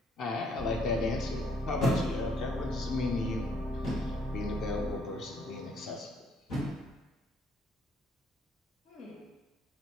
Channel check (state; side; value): normal; both; correlation 0.66